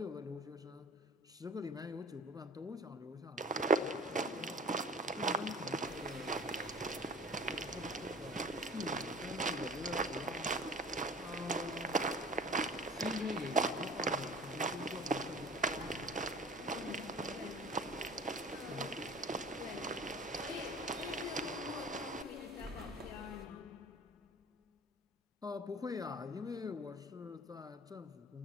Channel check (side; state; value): both; normal; correlation 0.44